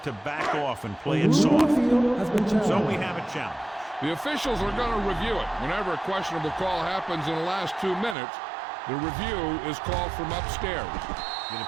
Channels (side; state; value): left; drops out; at 8.2 s